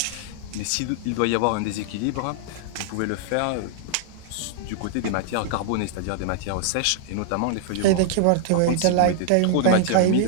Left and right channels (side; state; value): both; different; correlation 0.00